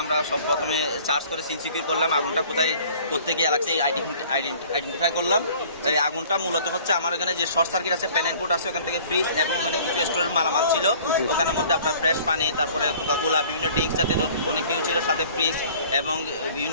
আমরা সব প্রথমে চার্জ করে সিন সিকিউর করলাম। আগুনটা কোথায় কোথেকে লাগছে আইডেন্টিফাই করলাম। এই আগুনটা মূলত হচ্ছে আমার এখানে যে শর্ট সার্কিট আছে, প্যানেল বোর্ড আছে, ওখান থেকে ফ্রিজ এবং ওখানে কিছু স্টোরের মালামাল ছিল। ওখানের মধ্যে আপনার ফ্রেশ পানি, তারপরে কোকাকোলা, বিভিন্ন ড্রিঙ্কস জাতীয় অনেক কিছু ছিল, সাথে ফ্রিজ এবং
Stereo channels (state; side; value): inverted; both; correlation -0.50